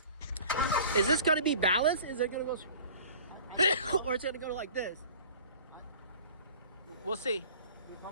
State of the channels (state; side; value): inverted; both; correlation -0.45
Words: Is this going to be balanced? Is it going to go, or it's going to go like this? We'll see.